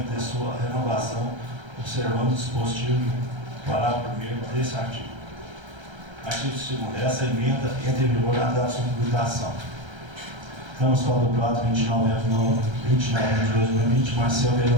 de sua renovação, observando o dispositivo do parágrafo 1º desse artigo. Artigo 2º. Essa emenda entra em vigor na data de sua publicação. Câmara Municipal do Prata, 29 de 2020, Marcel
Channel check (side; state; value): left; late; 1.3 ms